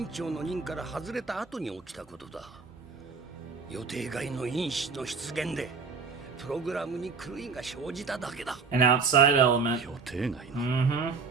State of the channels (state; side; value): quieter; left; 5.0 dB